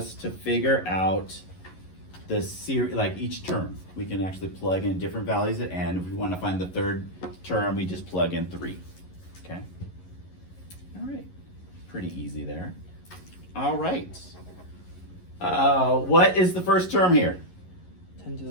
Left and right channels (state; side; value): late; right; 11 ms